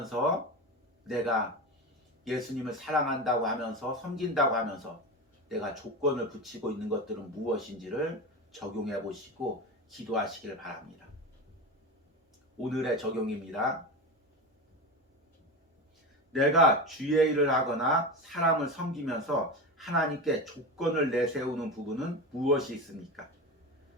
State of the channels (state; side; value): normal; both; correlation 0.23